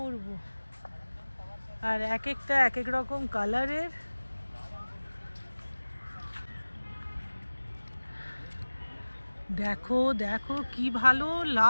আর এক একটা এক এক রকম কালারের। দেখো দেখো কি ভালো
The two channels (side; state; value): both; inverted; correlation -1.00